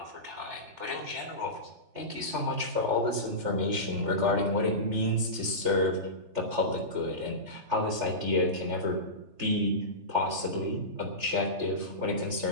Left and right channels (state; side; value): late; left; 3.4 ms